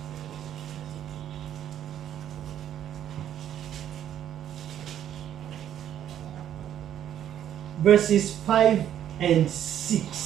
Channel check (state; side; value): quieter; left; 10.6 dB